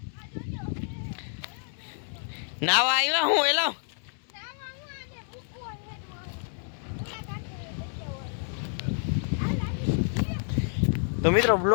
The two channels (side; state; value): right; silent; 58 dB below the other